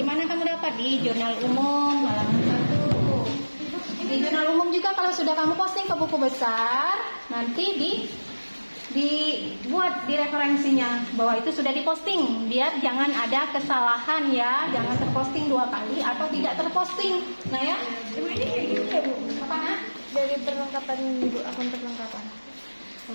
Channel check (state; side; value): inverted; both; correlation -1.00